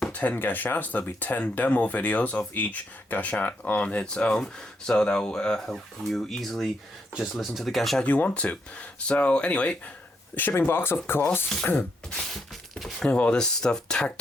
10 Gashats. There'll be 10 demo videos of each Gashat on its own. So that will help you easily just listen to the Gashat you want to. So anyway, shipping box, of course. All this stuff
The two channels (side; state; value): both; normal; correlation 0.78